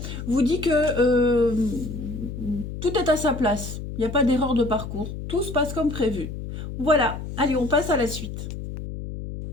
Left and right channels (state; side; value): noise; left; hum, 8 dB below the sound